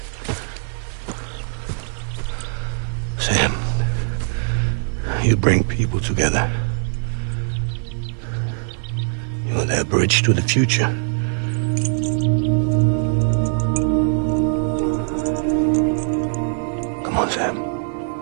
You bring people together. You're their bridge to the future. Come on, Sam.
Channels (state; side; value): silent; left; 56 dB below the other